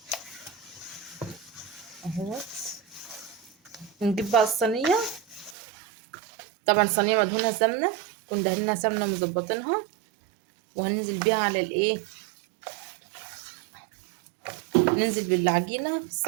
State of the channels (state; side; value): drops out; left; at 5.6 s